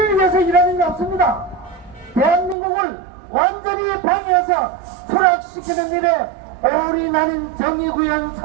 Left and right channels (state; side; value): drops out; left; at 2.6 s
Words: 위해서 일하는 게 없습니다. 대한민국을 완전히 방해해서 추락시키는 일에 올인하는 정의구현